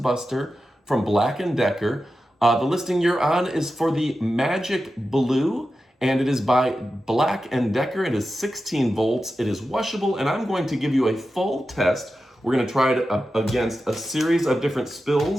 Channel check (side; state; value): both; normal; correlation 0.92